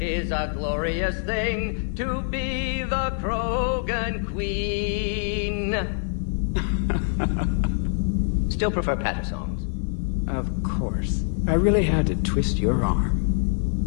is a glorious thing to be the Krogan queen. Still prefer patter songs. Of course. I really had to twist your arm.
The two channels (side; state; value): right; silent; 62 dB below the other